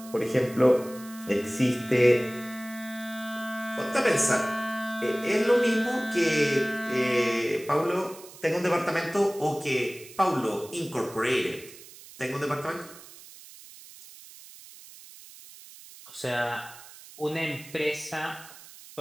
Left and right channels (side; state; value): right; noise; hiss, 18 dB below the sound